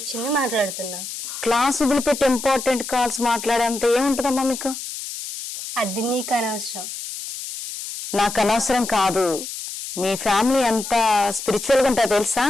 మాట్లాడుతున్నా. క్లాస్ వదిలిపెట్టి ఇంపార్టెంట్ కాల్స్ మాట్లాడేంత ఏముంటుందమ్మా మీకు? అది నీకు అనవసరం. నాకు అనవసరం కాదు. మీ ఫ్యామిలీ ఎంత స్పిరిచువల్గా ఉంటుందో తెలుసా?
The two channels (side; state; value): left; noise; hiss, 8 dB below the sound